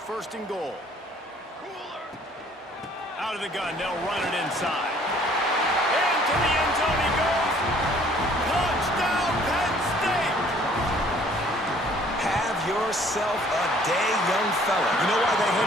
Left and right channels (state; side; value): normal; both; correlation 0.58